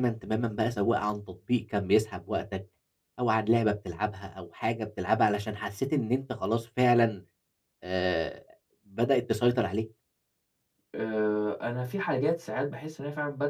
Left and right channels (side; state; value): both; identical; correlation 1.00